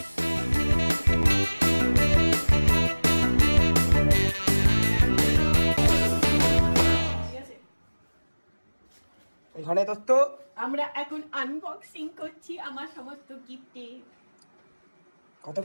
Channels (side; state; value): both; inverted; correlation -1.00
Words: এখানে তো আমরা এখন আনবক্সিং করছি আমার সমস্ত গিফটে। কত